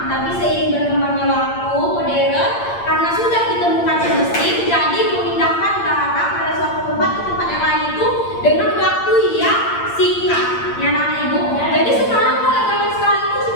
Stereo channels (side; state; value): right; late; 8.7 ms